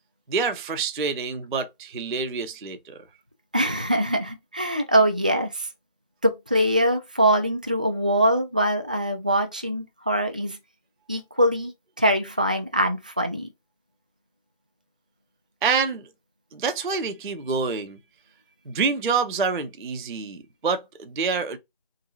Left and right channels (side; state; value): both; inverted; correlation -0.47